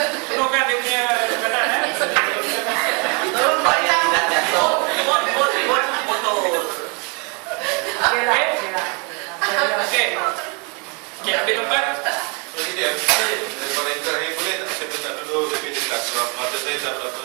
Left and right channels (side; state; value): left; quieter; 33.5 dB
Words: Penuhkan dia punya perkataan. tolong buat dia nak jatuh. Buat motor. Okey. Okey, ambil tempat. Jadi dia daripada yang terakhir boleh tak saya minta dulu lebih jelas sebab mata saya tak